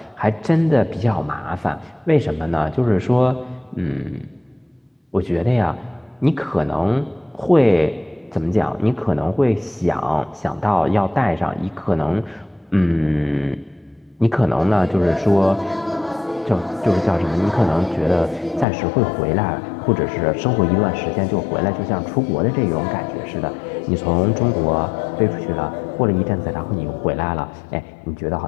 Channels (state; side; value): drops out; right; at 18.7 s